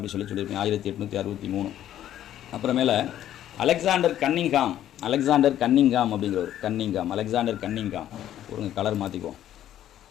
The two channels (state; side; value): quieter; right; 11.7 dB